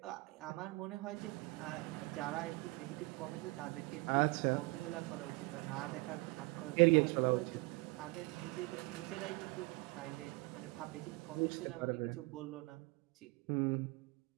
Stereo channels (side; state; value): left; quieter; 25.1 dB